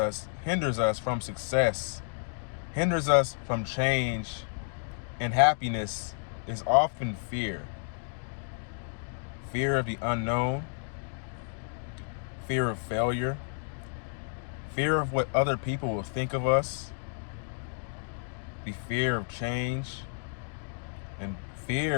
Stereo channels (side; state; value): right; silent; 57 dB below the other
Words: from success, hinders us from change and happiness is often fear. Fear of the unknown, fear of failure, fear of what other people will think of us, the fear of change, and